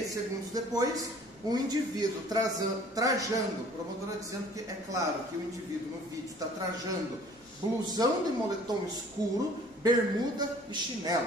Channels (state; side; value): noise; left; rumble, 28 dB below the sound